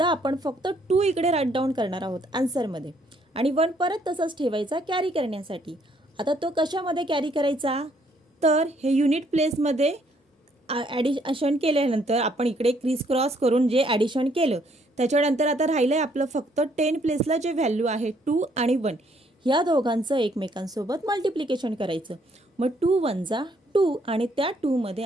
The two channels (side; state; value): both; normal; correlation 0.68